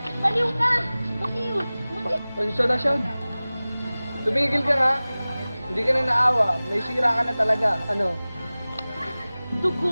Baliw ka! Baliw! Pasensya na siya. Tumigil ka nga. Hindi ka na naawa. May sira ka na talaga. Ano?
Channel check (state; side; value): inverted; both; correlation -0.98